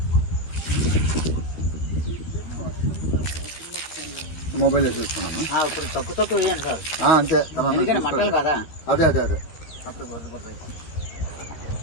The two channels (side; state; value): right; late; 13 ms